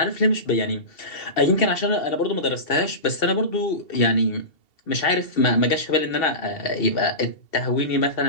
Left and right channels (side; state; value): right; late; 2.7 ms